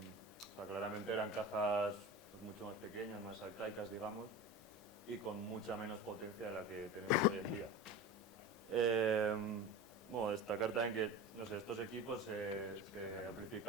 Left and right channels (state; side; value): normal; both; correlation 0.30